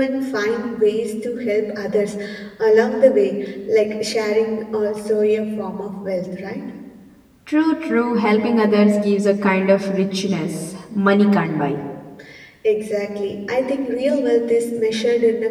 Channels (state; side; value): identical; both; correlation 1.00